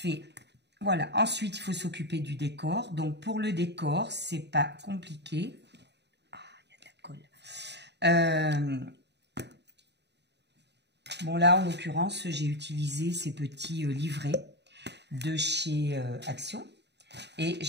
Voilà, ensuite il faut s'occuper du décor. Donc pour le décor, c'est pas compliqué. Ah, il y a de la colle. Bon là, en l'occurrence, j'ai utilisé ces petits livrets de chez Action et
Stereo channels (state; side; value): late; left; 0.50 ms